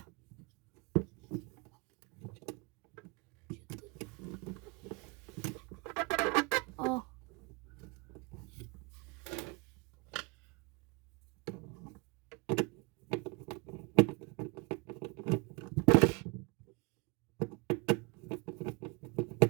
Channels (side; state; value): left; quieter; 29.2 dB